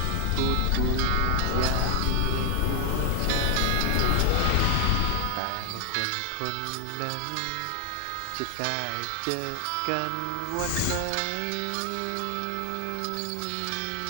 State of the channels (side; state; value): both; different; correlation 0.00